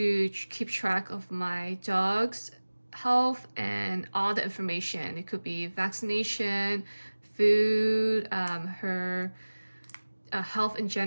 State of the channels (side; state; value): both; inverted; correlation -1.00